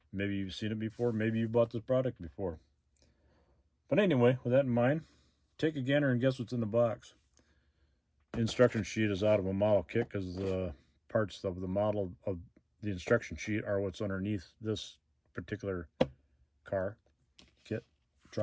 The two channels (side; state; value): both; identical; correlation 1.00